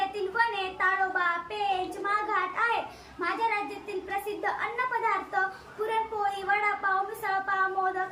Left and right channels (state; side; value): identical; both; correlation 1.00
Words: वने, ताडोबा, पेंच, माघाट आहे. माझ्या राज्यातील प्रसिद्ध अन्नपदार्थ पुरणपोळी, वडापाव, मिसळपाव,